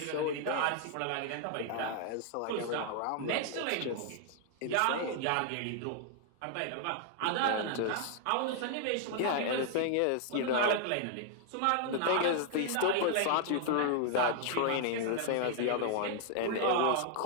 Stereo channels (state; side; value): different; both; correlation 0.00